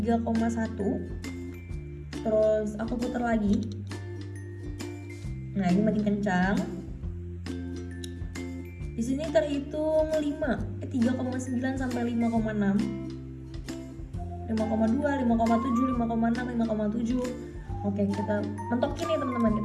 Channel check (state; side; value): identical; both; correlation 1.00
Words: Terus aku putar lagi. Nah, ini makin kencang. Di sini terhitung 3,9 sampai 5,6. 5,2, 5,7, 5,6, 5,7. Oke, kita mentokin nih teman-teman,